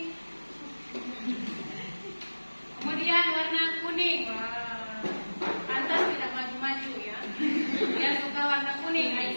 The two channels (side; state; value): both; inverted; correlation -1.00